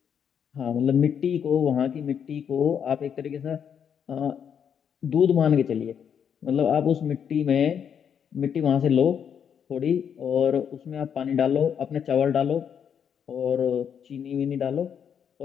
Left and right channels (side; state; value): right; quieter; 8.0 dB